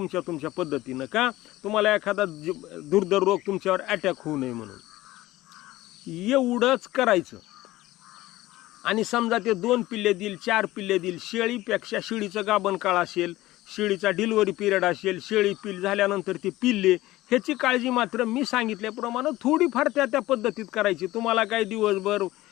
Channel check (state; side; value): quieter; right; 17.1 dB